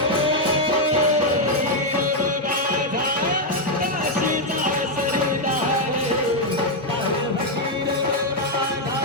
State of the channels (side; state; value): both; normal; correlation 0.01